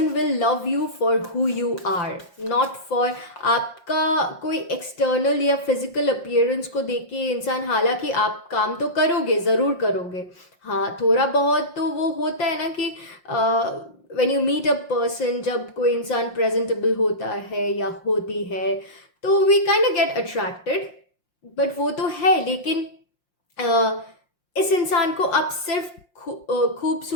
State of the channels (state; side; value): late; right; 5.7 ms